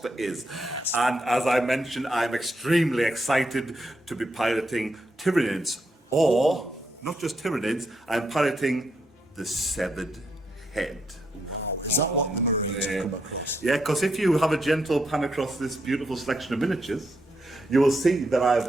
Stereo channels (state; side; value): normal; both; correlation 0.79